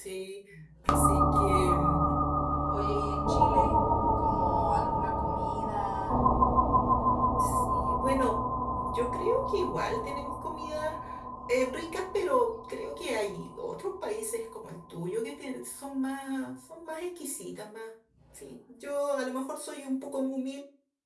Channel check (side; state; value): both; identical; correlation 1.00